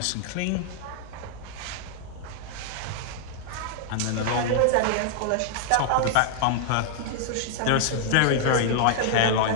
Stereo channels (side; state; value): both; different; correlation 0.00